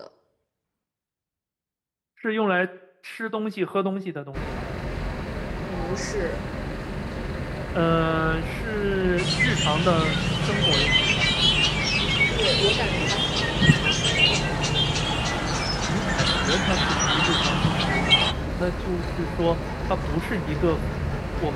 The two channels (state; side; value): identical; both; correlation 1.00